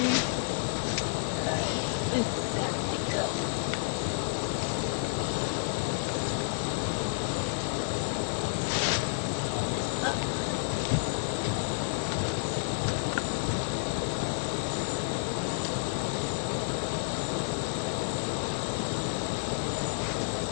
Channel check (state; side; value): silent; right; digital silence